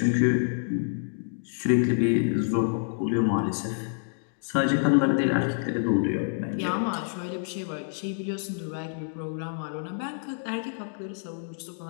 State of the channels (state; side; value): silent; right; digital silence